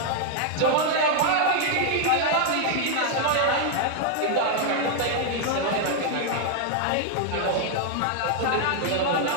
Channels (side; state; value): both; different; correlation 0.00